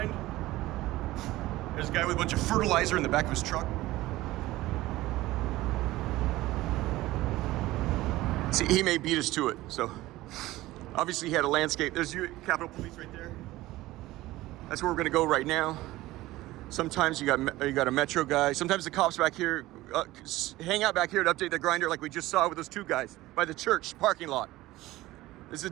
There's a guy with a bunch of fertilizer in the back of his truck. See, he may beat us to it. So obviously he had a landscape. There's Capitol Police right there. That's where we're gonna go right now. Sometimes you got a Metro guy. Sometimes the cops back here hang out back here to update the grinder like we just saw with those two guys by the church parking lot. This is the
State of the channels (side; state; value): left; quieter; 17.5 dB